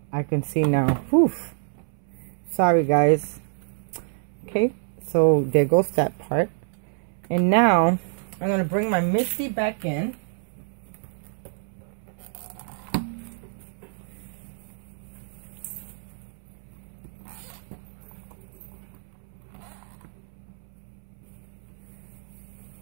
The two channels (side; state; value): left; silent; 60 dB below the other